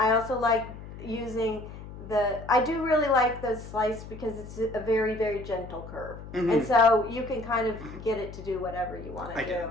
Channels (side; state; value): left; noise; hum, 13 dB below the sound